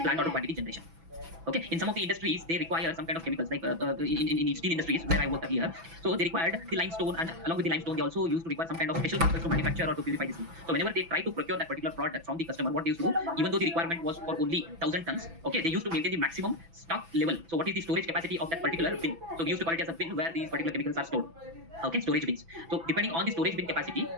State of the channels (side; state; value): left; late; 6.0 ms